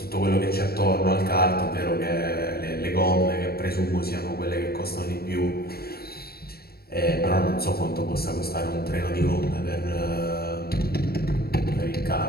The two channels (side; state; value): right; late; 0.45 ms